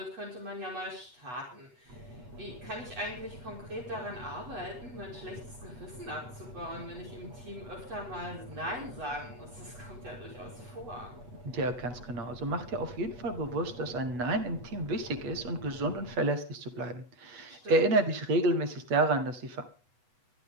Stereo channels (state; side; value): late; left; 8.1 ms